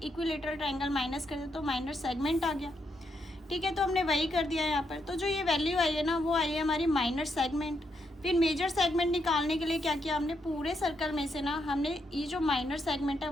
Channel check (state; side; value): normal; both; correlation 0.79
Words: ट्रायंगल माइनस कर दिया तो माइनर सेगमेंट आ गया। ठीक है, तो हमने वही कर दिया यहाँ पर। तो जो ये वैल्यू आई है ना वो आई है हमारी माइनर सेगमेंट। फिर मेजर सेगमेंट निकालने के लिए क्या किया हमने, पूरे सर्कल में से ना हमने ये जो माइनर सेगमेंट है